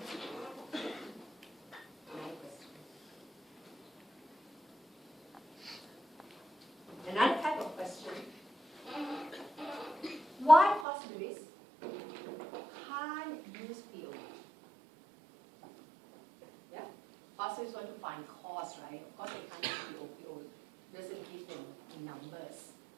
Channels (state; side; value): drops out; left; at 10.9 s